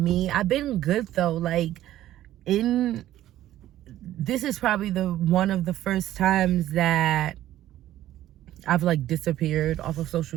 I've been good though. Like, this is probably one of the first times that I've like disappeared off of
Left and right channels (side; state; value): left; quieter; 13.5 dB